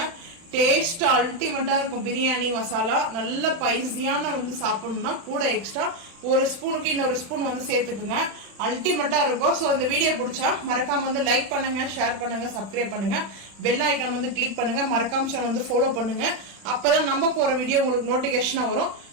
டேஸ்ட் அல்டிமேட்டாக இருக்கும். பிரியாணி மசாலா நல்ல பைசியான வந்து சாப்பிடணும்னா கூட எக்ஸ்ட்ரா ஒரு ஸ்பூனுக்கு இன்னொரு ஸ்பூன் வந்து சேர்த்துக்குங்க. அல்டிமேட்டாக இருக்கும். ஸோ அந்த வீடியோ பிடிச்சா மறக்காம வந்து லைக் பண்ணுங்க, ஷேர் பண்ணுங்க, சப்ஸ்கிரைப் பண்ணுங்க, பெல் ஐக்கான் வந்து கிளிக் பண்ணுங்க, மறக்காம வந்து ஃபாலோ பண்ணுங்க. அப்பதான் நம்ம போற வீடியோ உங்களுக்கு நோட்டிபிகேஷனா வரும்.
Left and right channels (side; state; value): left; late; 35 ms